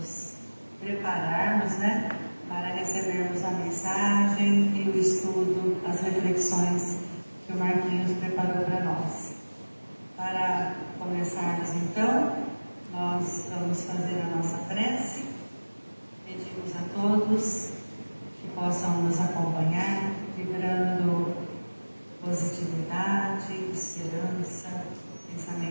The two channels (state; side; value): inverted; both; correlation -1.00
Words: prepararmos, né, para recebermos a mensagem e o estudo, as reflexões que o Marquinhos preparou para nós. Para começarmos, então, nós vamos fazer a nossa prece. Pedimos a todos que possam nos acompanhar, vibrando positividade, esperança,